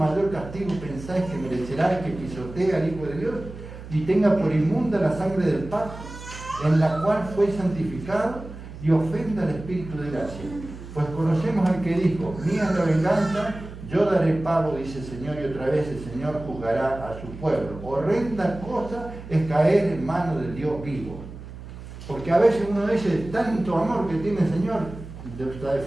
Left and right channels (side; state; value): right; noise; hum, 13 dB below the sound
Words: castigo pensáis que merecerá el que pisotee al Hijo de Dios y tenga por inmunda la sangre del pacto, en la cual fue santificado, y ofenda al Espíritu de gracia? Pues conocemos al que dijo, mía es la venganza, yo daré pago, dice el Señor, y otra vez el Señor juzgará a su pueblo. Horrenda cosa es caer en manos del Dios vivo. Porque a veces uno dice, tanto amor que tiene el Señor, la